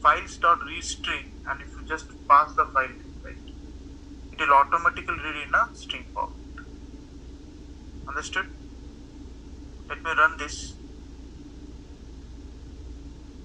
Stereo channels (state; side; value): identical; both; correlation 1.00